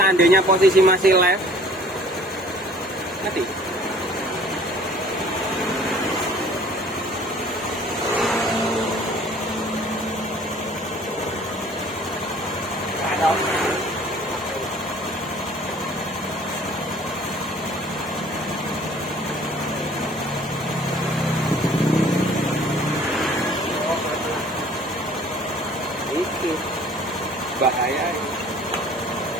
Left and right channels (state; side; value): normal; both; correlation 0.52